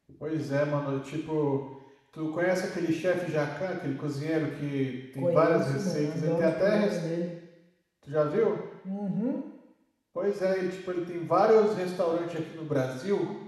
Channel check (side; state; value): both; identical; correlation 1.00